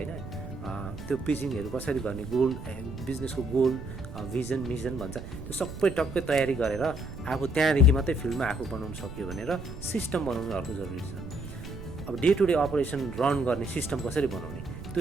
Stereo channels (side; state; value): right; noise; rumble, 11 dB below the sound